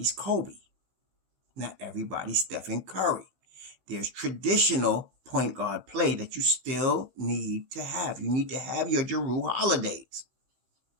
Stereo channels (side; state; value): left; late; 15 ms